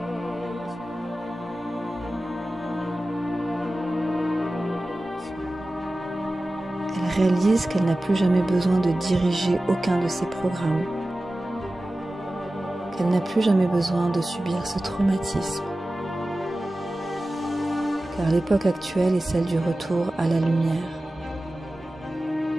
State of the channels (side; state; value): both; normal; correlation 0.95